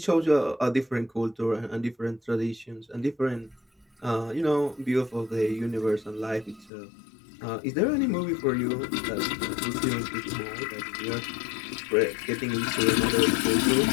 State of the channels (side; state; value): right; drops out; at 6.7 s